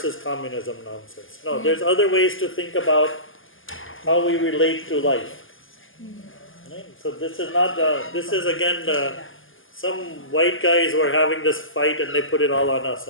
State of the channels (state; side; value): late; right; 0.58 ms